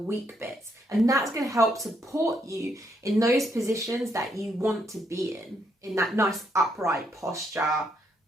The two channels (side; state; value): both; normal; correlation 0.75